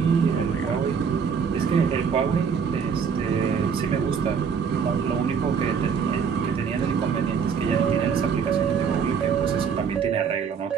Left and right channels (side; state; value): left; quieter; 6.5 dB